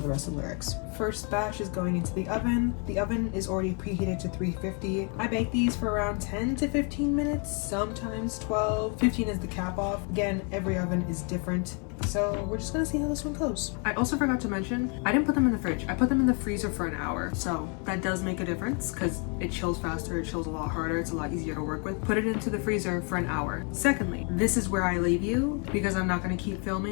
rest of the lyrics. First batch is going into the oven. The oven is already preheated to 350. I bake these for around 10 to 15 minutes, sometimes 12. 15 is the cap off. Again, every oven is different. So we're just gonna see how this one goes. I also forgot to mention, I didn't put them in the fridge. I put them in the freezer for an hour. So that does make a difference because it chills faster, it chills a lot harder, it's a lot easier to work with. Put it into the freezer for an hour. Secondly, this is where I leave you because I'm not gonna keep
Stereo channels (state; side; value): quieter; right; 36.8 dB